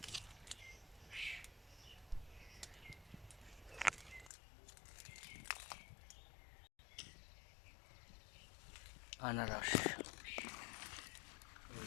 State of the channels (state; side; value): drops out; right; at 4.3 s